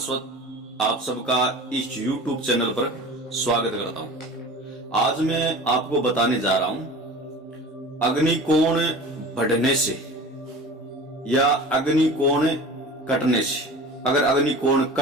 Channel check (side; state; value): both; normal; correlation 0.37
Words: आप सबका इस YouTube चैनल पर स्वागत करता हूं। आज मैं आपको बताने जा रहा हूं अग्निकोण बढ़ने से या अग्निकोण कटने से। अगर अग्निकोण